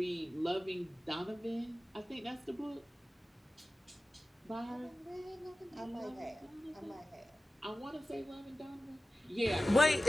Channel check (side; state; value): both; normal; correlation 0.95